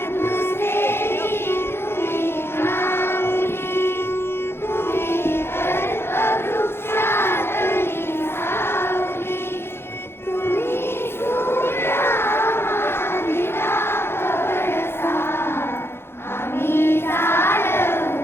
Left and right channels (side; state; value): right; late; 0.11 ms